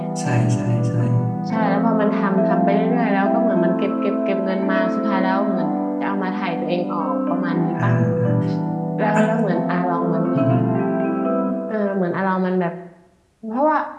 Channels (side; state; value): both; identical; correlation 1.00